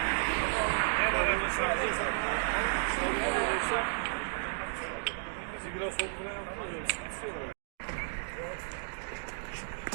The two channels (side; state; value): left; silent; digital silence